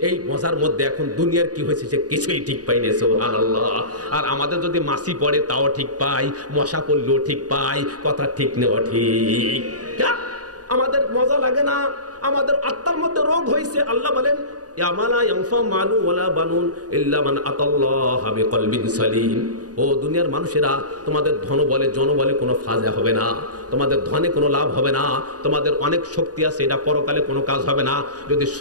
এই মজার মধ্যে এখন দুনিয়ার কি হয়েছে সে কিছুই ঠিক পাইনি। সুবহানাল্লাহ। আর আমাদের যদি মাছি পড়ে তাও ঠিক পাই, মশা পড়লেও ঠিক পাই। কথা ঠিক নেওয়া ঠিক। আমাদের মজা লাগে না, আমাদের আত্মার মধ্যে রোগ হয়েছে। আল্লাহ বলেন ইয়ামালা ইয়ানফা মালু ওয়ালা বানুন ইল্লা মান আতাল্লাহা বিকলবিন সালিম। ও দুনিয়ার মানুষেরা, তোমাদের ধন বলে জন বলে কোনো ফায়দা হবে না, তোমাদের ধনে কোনো লাভ হবে না, তোমাদের অনেক শক্তি আছে, এটা পরকালে কোনো কাজ হবে না যদি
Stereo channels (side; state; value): left; late; 0.68 ms